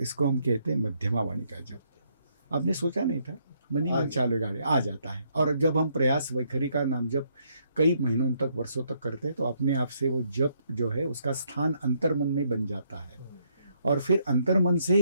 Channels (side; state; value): both; inverted; correlation -0.72